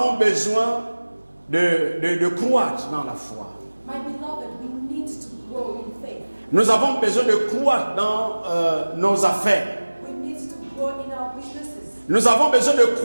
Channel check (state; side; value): inverted; both; correlation -1.00